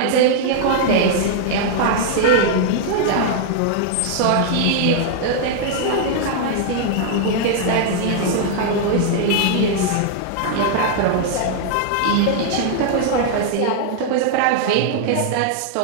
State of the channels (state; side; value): different; both; correlation -0.01